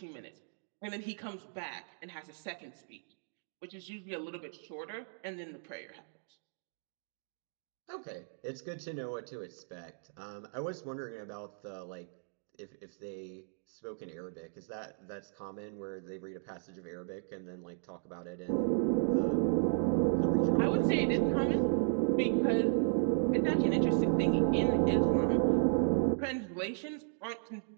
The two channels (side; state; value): left; silent; digital silence